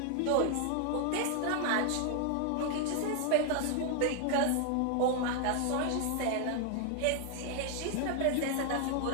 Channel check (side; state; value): both; different; correlation 0.00